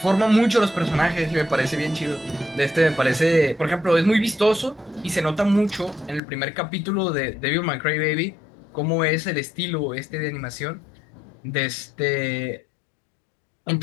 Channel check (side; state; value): right; drops out; at 6.2 s